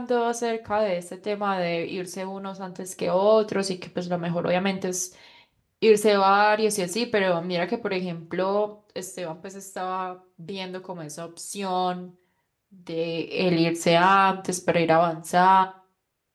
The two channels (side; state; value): both; identical; correlation 1.00